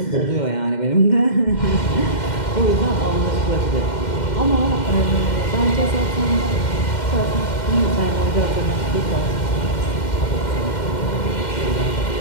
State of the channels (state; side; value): late; right; 2.1 ms